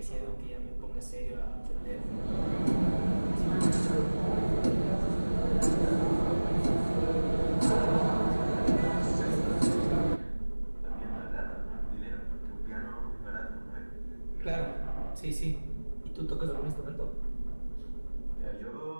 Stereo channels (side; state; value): both; inverted; correlation -1.00